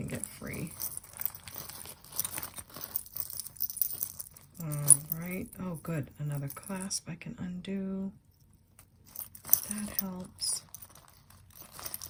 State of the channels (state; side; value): identical; both; correlation 1.00